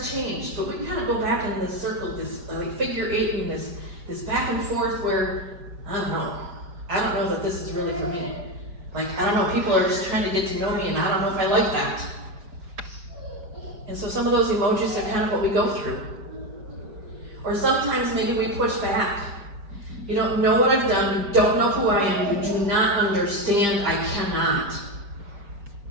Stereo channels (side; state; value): left; late; 5.0 ms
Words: change, but we kind of go back in this circle, this like figure eight, and this back and forth where, I don't know that this is really for me. Like, I don't know, people are just trying to get to know me, and I don't know if I like that. And so some of those emojis are kind of what we go through. Or sometimes maybe we push back. You don't know what I've done, you don't know who I am, you do not understand, I cannot.